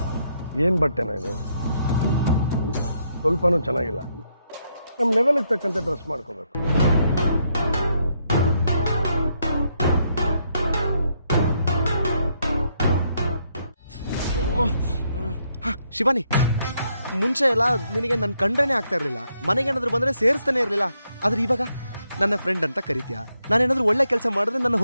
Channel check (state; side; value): inverted; both; correlation -0.77